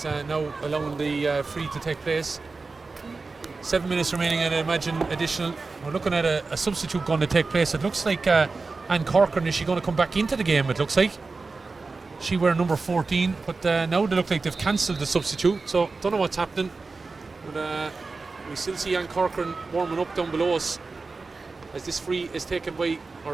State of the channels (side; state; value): left; quieter; 4.0 dB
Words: now allowing the free to take place. 7 minutes remaining, and I imagine additional. We're looking at a substitute going to take place. It looks like Anne Corcoran, is she going to come back into the game? It looks like she wear number 14, but now they look like they've cancelled the substitute, so don't know what's happening. But we still see Anne Corcoran warming up down below us as this free is taken by,